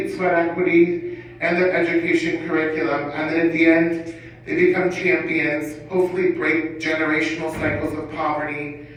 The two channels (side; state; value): both; identical; correlation 1.00